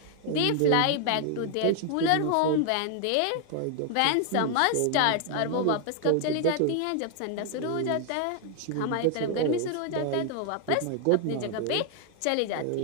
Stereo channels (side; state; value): both; different; correlation 0.00